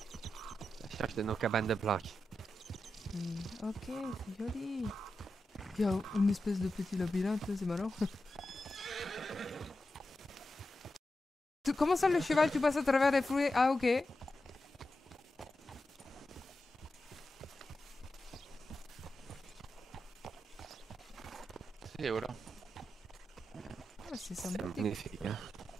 La cherche de nos cabanes de planches. Ok, c'est joli. Il y a une espèce de petit labyrinthe, c'est marrant. Comment ça le cheval, tu passes à travers les fruits? Ah, ok. Et voilà. Ah, c'est C'est sympathique. magnifique, hein.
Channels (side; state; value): both; normal; correlation 0.90